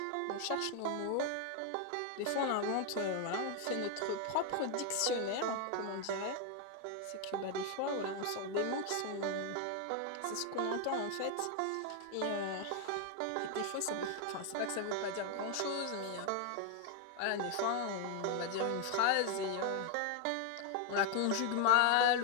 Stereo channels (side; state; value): both; different; correlation 0.00